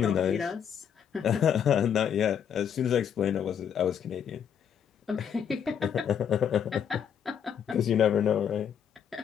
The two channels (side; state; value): right; quieter; 8.2 dB